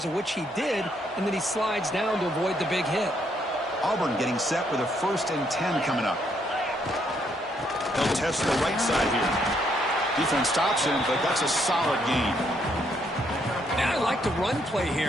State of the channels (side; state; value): both; normal; correlation 0.72